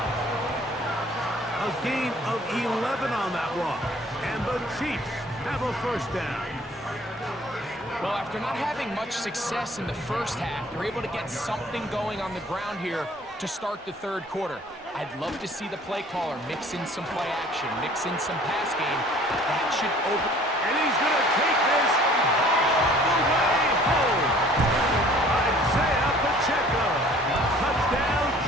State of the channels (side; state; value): both; normal; correlation 0.53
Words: A gain of 11 on that one. And the Chiefs have a 1st down. Well, after not having much success in the first half, they're able to get something going on the ground here to start the 3rd quarter. I'd love to see the play caller mix in some play action, mix in some pass game. That should open. And he's going to take this all